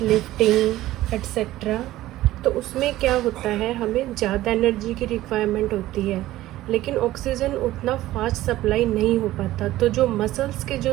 etc., तो उसमें क्या होता है, हमें ज़्यादा energy की requirement होती है, लेकिन ऑक्सीजन उतना फास्ट सप्लाई नहीं हो पाता। तो जो मसल्स के जो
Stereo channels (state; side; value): quieter; left; 15.5 dB